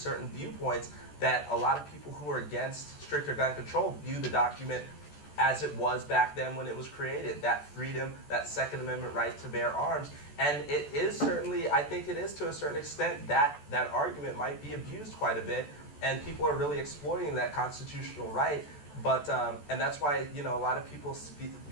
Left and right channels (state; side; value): late; right; 14 ms